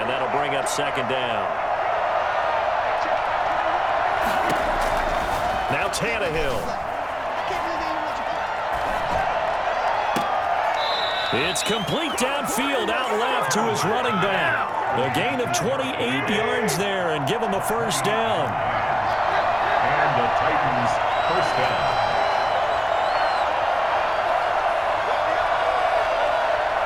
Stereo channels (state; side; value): identical; both; correlation 1.00